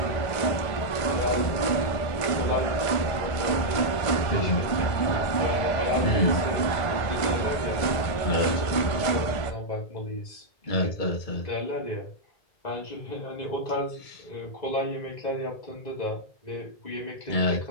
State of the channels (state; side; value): late; right; 1.5 ms